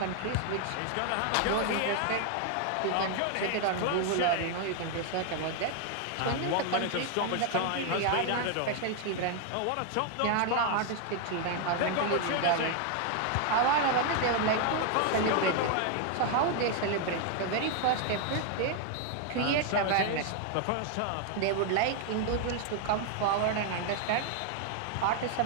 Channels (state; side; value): different; both; correlation 0.00